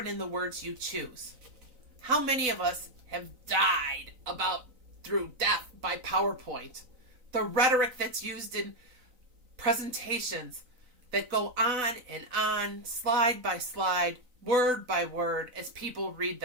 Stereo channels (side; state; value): left; late; 3.9 ms